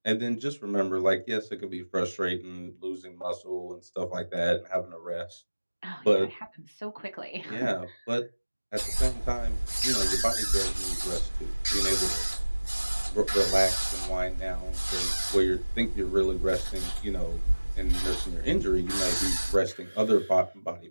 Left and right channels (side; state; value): both; inverted; correlation -1.00